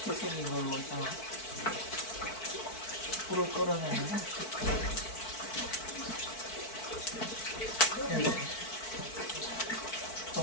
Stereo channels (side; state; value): right; late; 4.5 ms